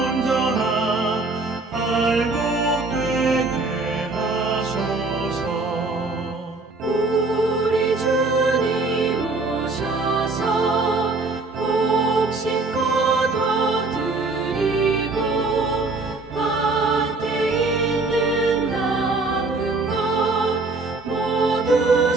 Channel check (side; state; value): left; quieter; 3.4 dB